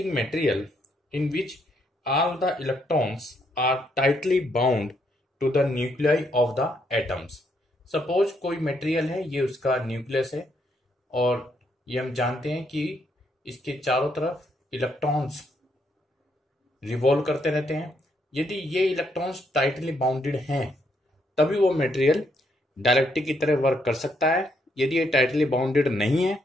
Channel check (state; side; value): normal; both; correlation 0.74